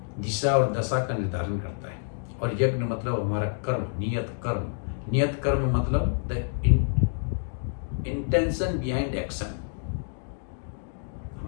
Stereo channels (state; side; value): silent; right; digital silence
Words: दिशा और दशा का निर्धारण करता है, और यज्ञ मतलब हमारा कर्म, नियत कर्म। नियत कर्म मतलब द इंटेंशन बिहाइंड एक्शन।